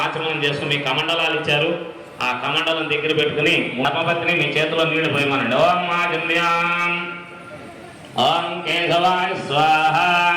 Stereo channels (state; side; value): identical; both; correlation 1.00